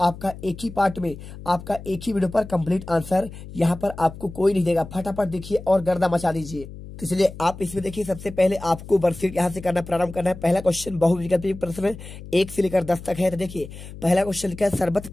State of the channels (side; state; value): left; noise; hum, 14 dB below the sound